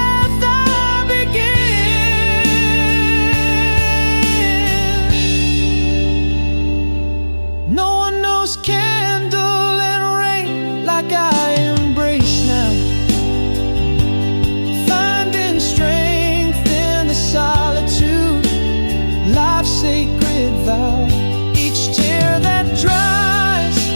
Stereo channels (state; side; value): inverted; both; correlation -1.00